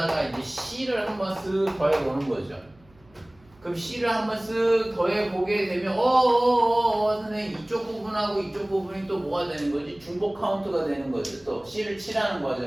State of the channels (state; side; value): noise; right; hum, 29 dB below the sound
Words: 이제 C를 한번 쓱 더해보는 거죠. 그럼 C를 한번 쓱 더해보게 되면 선생님 이쪽 부분하고 이쪽 부분이 또 뭐가 되는 거지? 중복 카운트가 되는 거죠. 또 C를 칠하는